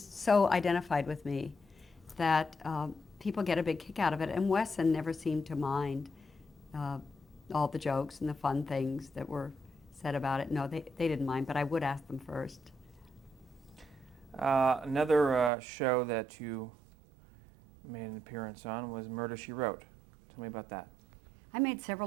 so identified with me that people get a big kick out of it, and Wesson never seemed to mind all the jokes and the fun things that were said about it. No, they didn't mind, but I would ask them first. Another show that you made an appearance on was Murder, She Wrote. Tell me about that. I made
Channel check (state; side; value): drops out; left; at 15.5 s